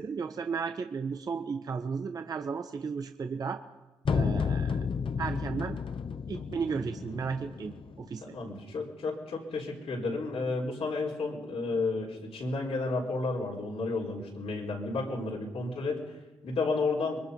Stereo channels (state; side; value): normal; both; correlation 0.75